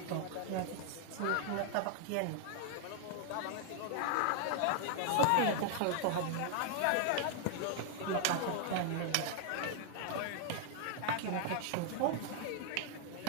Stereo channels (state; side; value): different; both; correlation 0.00